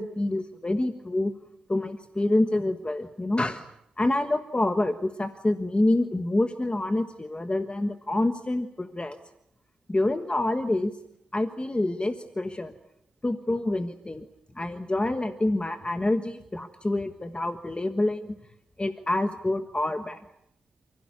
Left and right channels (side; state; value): both; normal; correlation 0.97